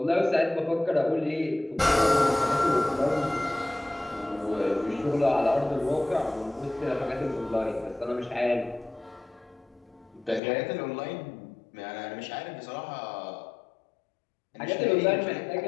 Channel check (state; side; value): drops out; right; at 10.4 s